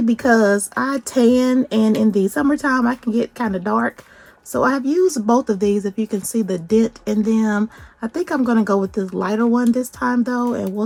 because I tan, and in the summertime I can get kind of dark. So I have used both of these. If you can see the dent in them, I think I'm going to go with this lighter one this time though, and we'll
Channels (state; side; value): identical; both; correlation 1.00